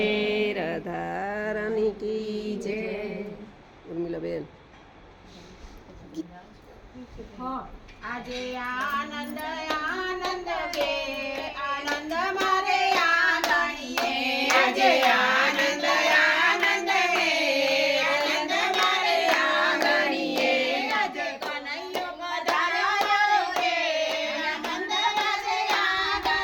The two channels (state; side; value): identical; both; correlation 1.00